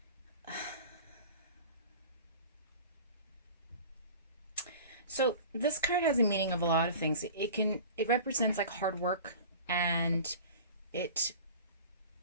so this card has a meaning of a lot of things. It represents like hard work, and it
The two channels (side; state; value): both; inverted; correlation -0.39